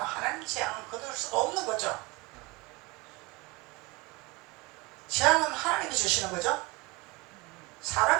재앙은 거둘 수가 없는 거죠. 재앙은 하나님이 주시는 거죠.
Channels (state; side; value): quieter; left; 24.3 dB